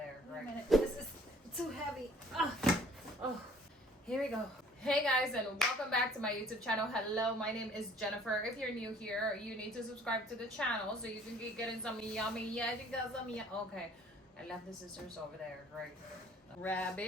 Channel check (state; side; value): normal; both; correlation 0.55